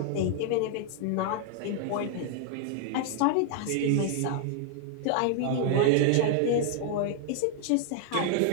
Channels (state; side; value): different; both; correlation 0.00